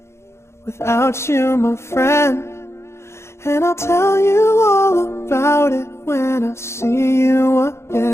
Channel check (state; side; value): late; right; 0.13 ms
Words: without you, my friend. And I'll tell you all about it when I see you